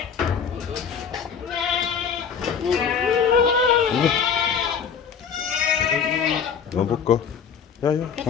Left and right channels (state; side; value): quieter; right; 7.0 dB